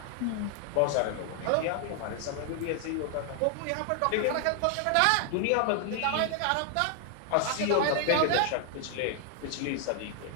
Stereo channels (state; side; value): different; both; correlation 0.00